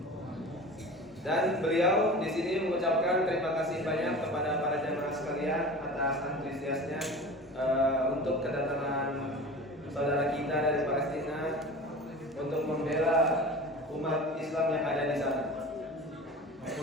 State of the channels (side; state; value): both; normal; correlation 0.36